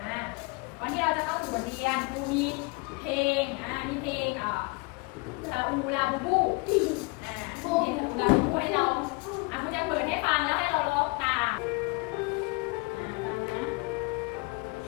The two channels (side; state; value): right; quieter; 28.5 dB